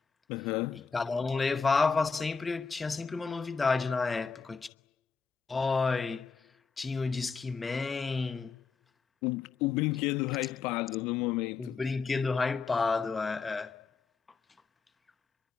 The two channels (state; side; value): quieter; right; 5.2 dB